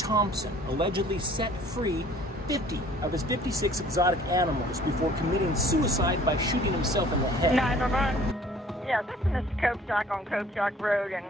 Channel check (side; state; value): both; normal; correlation 0.53